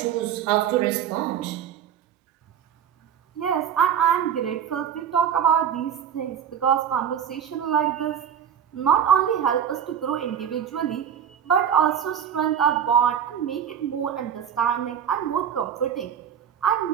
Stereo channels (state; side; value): quieter; left; 8.7 dB